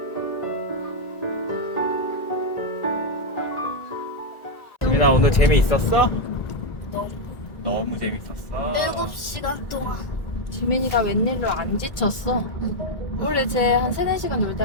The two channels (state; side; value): late; right; 1.8 ms